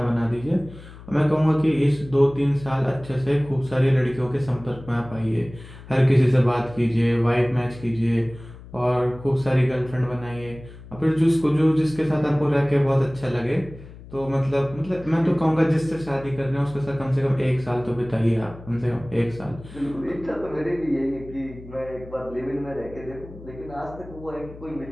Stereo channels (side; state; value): left; noise; hum, 17 dB below the sound